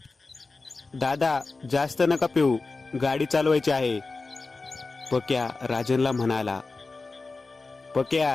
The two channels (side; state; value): right; quieter; 3.8 dB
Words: दादा, जास्त नका पिऊ, गाडी चालवायची आहे, पक्या राजनला म्हणाला.